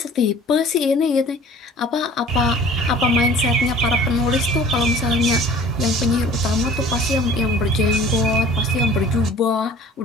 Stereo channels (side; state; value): both; normal; correlation 0.47